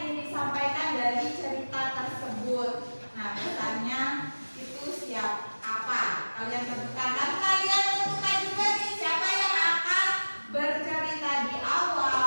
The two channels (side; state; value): both; inverted; correlation -1.00